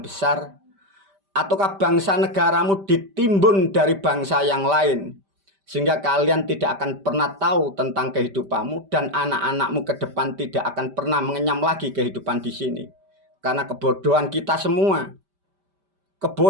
Ataukah bangsa negaramu ditimbun dari bangsa yang lain? Sehingga kalian tidak akan pernah tahu tentang kehidupanmu dan anak-anakmu ke depan tidak akan pernah mengenyam lagi kehidupan di sini. Karena kebodohan kita semua.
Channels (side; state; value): left; late; 5.1 ms